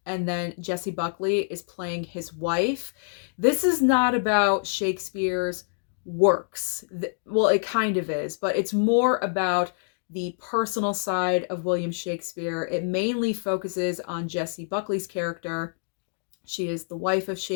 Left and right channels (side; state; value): right; silent; digital silence